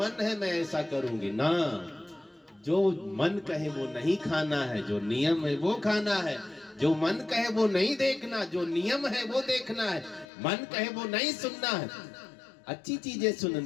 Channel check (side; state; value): right; drops out; at 10.2 s